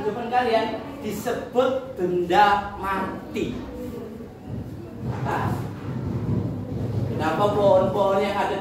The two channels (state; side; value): identical; both; correlation 1.00